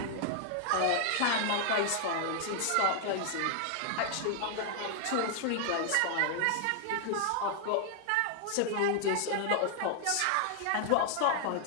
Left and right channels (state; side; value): different; both; correlation 0.00